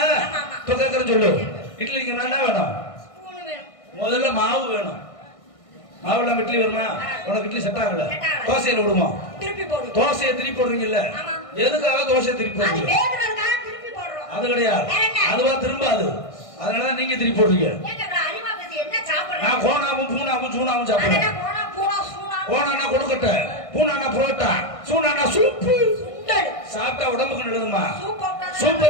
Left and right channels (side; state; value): right; late; 1.6 ms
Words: இப்ப கேக்குற சொல்லு. இட்லி என்ன வேணும்? முதல்ல மாவு வேணும். மாவுல இட்லி வருமா? உனக்கு இட்லி செட் ஆகல. தோசையில விடுமா? தோசையை திருப்பி போடுறீங்கல்ல? எதுக்காக தோசையை திருப்பி போடுறீங்க? அது கிடையாது. அதுவா திரும்பாது. அதனாலதான் நீங்க திருப்பி போடுறீங்க. நான் கோணாவும் பூனாவும் சூனாவும் சாப்பிடுறேன். கோணானா கொழுக்கட்டை, பூனானா புரோட்டா, சூனானா சூப்பு. சாப்பிட்டா உடம்புக்கு நல்லதுமா?